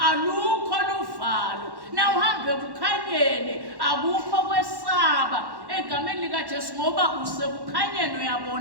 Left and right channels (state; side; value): late; left; 1.1 ms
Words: alukho luvalo, nawe uhambe ebukhanyeni akukho kwesaba egameni likaJesu ngoba usekukhanyeni